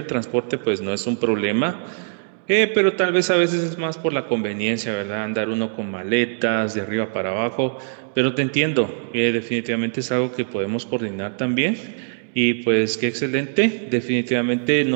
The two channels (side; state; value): left; silent; digital silence